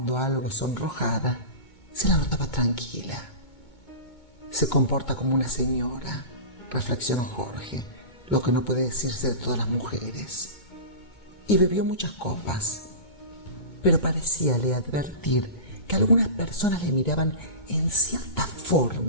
algo sonrojada, se la notaba tranquila. Se comporta como una señora, reflexionó Jorge, lo que no puede decirse de todas las mujeres. Y bebió muchas copas, pero parecíale advertir que algunas personas le miraban en cierta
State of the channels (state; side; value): late; right; 2.2 ms